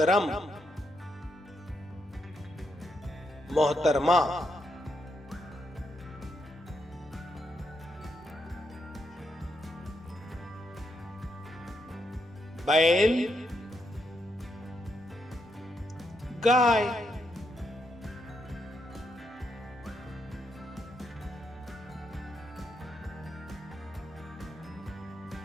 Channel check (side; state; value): both; normal; correlation 0.80